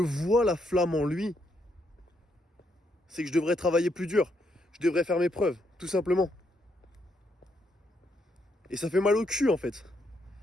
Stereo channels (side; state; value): both; normal; correlation 0.76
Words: la flamme en lui, c'est que je devrais travailler plus dur. Je devrais faire mes preuves, tout simplement. Et ça fait mal au cul, en fait.